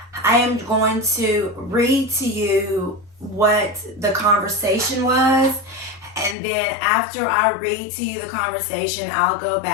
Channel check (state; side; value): drops out; right; at 6.4 s